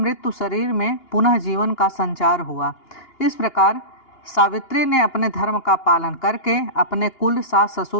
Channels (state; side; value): late; right; 2.9 ms